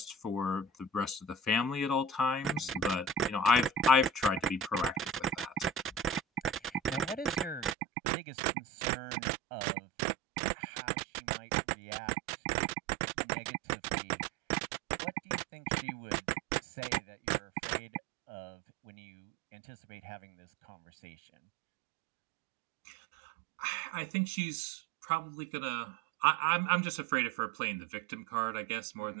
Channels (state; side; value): drops out; left; at 7.8 s